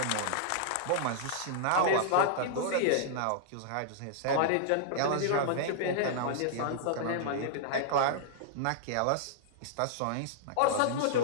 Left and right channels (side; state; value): both; different; correlation -0.01